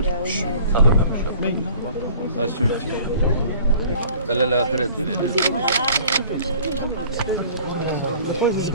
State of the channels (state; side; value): inverted; both; correlation -0.49